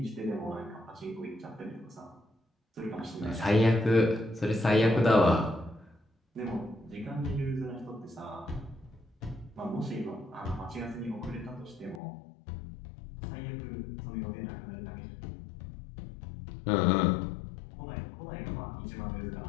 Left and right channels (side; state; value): right; drops out; at 12.0 s